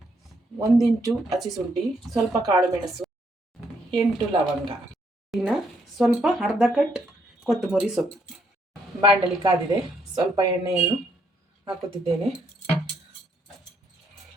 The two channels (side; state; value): both; normal; correlation 0.73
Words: 1 ಇಂಚು ಹಸಿ ಶುಂಠಿ, ಸ್ವಲ್ಪ ಕಾಳು ಮೆಣಸು, 8 ಲವಂಗ, ಇನ್ನು ಸ್ವಲ್ಪ ಅರ್ಧ ಕಟ್ ಕೊತ್ತಂಬರಿ ಸೊಪ್ಪು. ಬಾಣಲಿ ಕಾದಿದೆ, ಸ್ವಲ್ಪ ಎಣ್ಣೆಯನ್ನು ಹಾಕುತ್ತಿದ್ದೇನೆ.